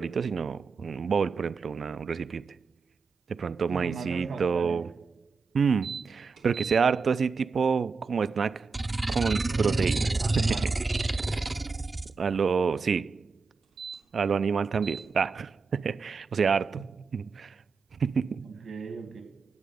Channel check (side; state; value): left; quieter; 4.8 dB